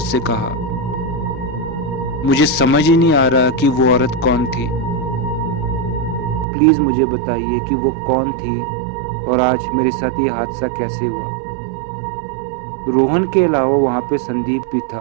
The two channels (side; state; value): left; drops out; at 6.5 s